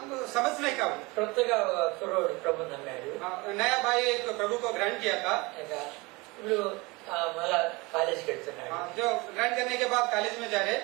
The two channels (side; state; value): left; quieter; 24.8 dB